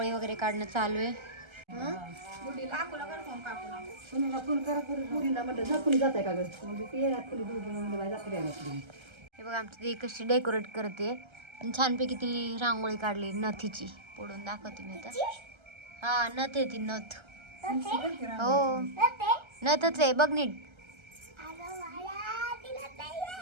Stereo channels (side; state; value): left; late; 1.3 ms